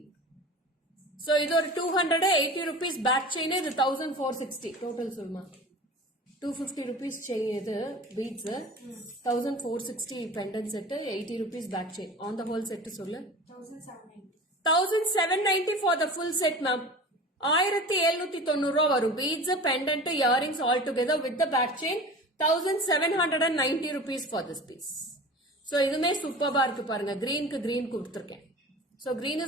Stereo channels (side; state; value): both; normal; correlation 0.37